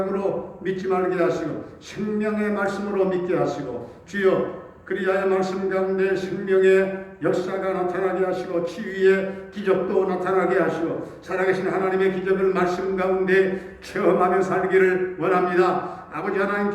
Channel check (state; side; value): identical; both; correlation 1.00